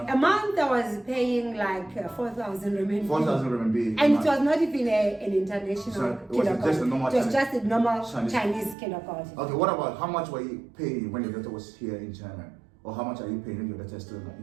A month I was paying like 4,000 renminbi. 4,000 renminbi. And it was not even an international kindergarten. Just a normal it was just a normal Chinese kindergarten. Okay, what about how much were you paying when your daughter was here in China? Or how much are you paying when your daughter is still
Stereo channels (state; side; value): drops out; left; at 8.8 s